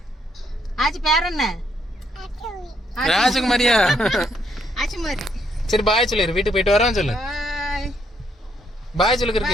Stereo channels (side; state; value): both; normal; correlation 0.73